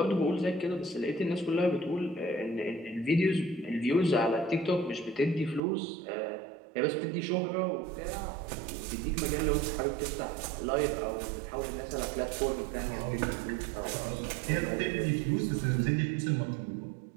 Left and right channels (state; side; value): drops out; left; at 5.6 s